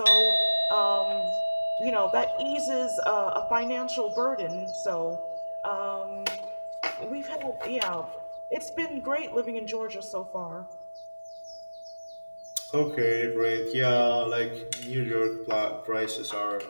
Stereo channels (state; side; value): inverted; both; correlation -1.00